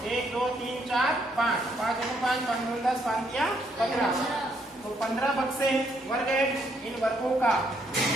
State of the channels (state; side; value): normal; both; correlation 0.72